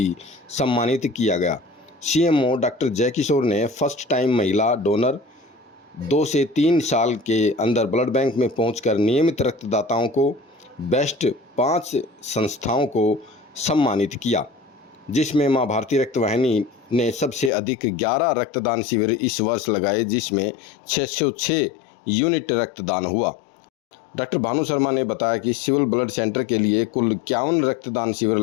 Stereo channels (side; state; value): right; drops out; at 17.5 s